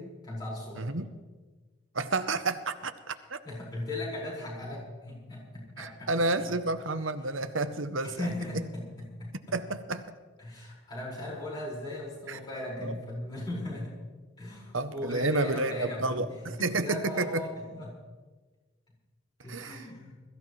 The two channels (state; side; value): normal; both; correlation 0.02